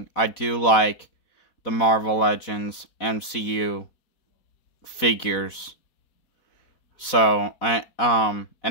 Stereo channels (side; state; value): right; late; 4.1 ms